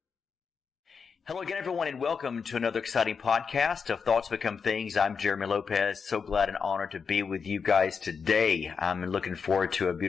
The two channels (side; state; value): right; quieter; 5.8 dB